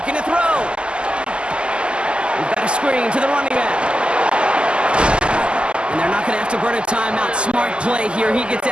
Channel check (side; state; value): left; late; 0.050 ms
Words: to throw. We've got a screen to the running back. And they're not going to have to burn a timeout. Smart play here. He gets